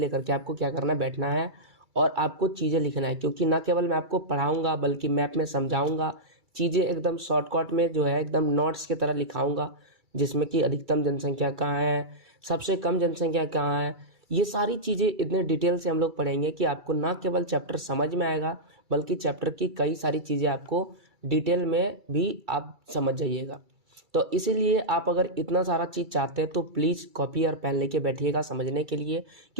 के आपको क्या करना, बैठना है और आपको चीज़ें लिखना है। क्योंकि ना केवल मैं आपको पढ़ाऊंगा बल्कि मैप में समझाऊंगा, चीज़ें एकदम शॉर्टकट में जो है एकदम नोट्स की तरह लिखाऊंगा, जिसमें कि अधिकतम जनसंख्या कहाँ है, सबसे कम जनसंख्या कहाँ है, ये सारी चीज़ें इतने डिटेल से हम लोग पढ़ेंगे कि आपको ना केवल चैप्टर समझ में आएगा बल्कि चैप्टर की कई सारी चीज़ें आपको डिटेल में भी आप समझ जाइएगा। तो इसीलिए आप अगर इतना सारा चीज़ चाहते हैं तो प्लीज़ कॉपी और पेन लेके बैठिएगा समझने के लिए,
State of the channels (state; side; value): late; left; 2.3 ms